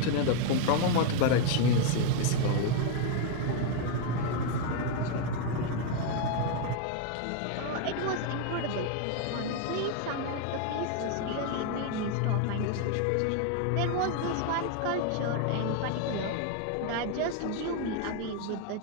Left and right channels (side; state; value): both; different; correlation 0.01